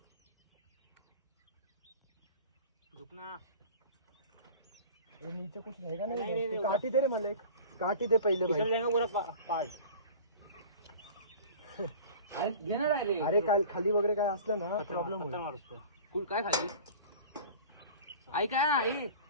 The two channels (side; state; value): both; inverted; correlation -0.41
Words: नीचे कुछ रहेगा नहीं. काटी दे रे मला एक. काटी दे पहिले भाई. घेणार आहे रे. अरे काय खाली वगैरे काय असलं ना प्रॉब्लेम कुल काय खाली ऐका ना.